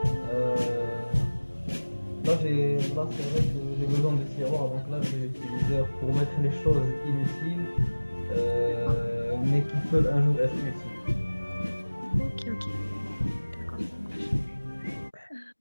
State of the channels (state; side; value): inverted; both; correlation -1.00